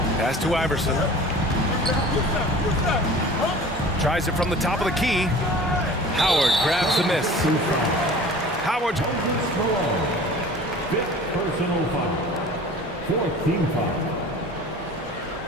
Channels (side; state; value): both; normal; correlation 0.42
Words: Pass to Iverson. Tries it from the top of the key. Howard grabs the miss. Howard. Fifth personal foul. Fourth team foul.